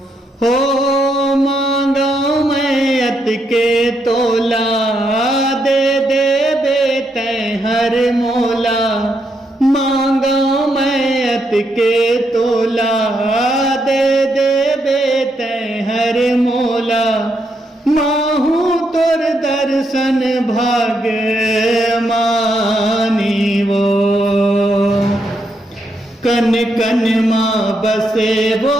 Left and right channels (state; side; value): normal; both; correlation 0.79